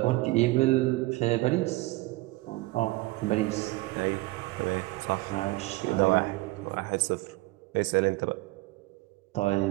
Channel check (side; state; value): left; quieter; 20.6 dB